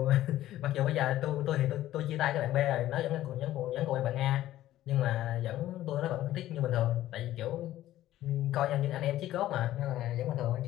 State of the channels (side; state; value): right; quieter; 14.0 dB